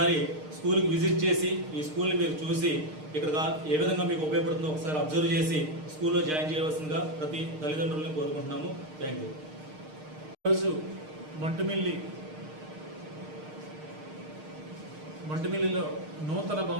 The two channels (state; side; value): late; left; 6.5 ms